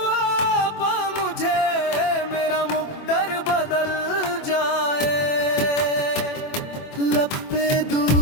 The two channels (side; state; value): right; late; 24 ms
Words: पा मुझे, मेरा मुकद्दर बदल जाए। लब पे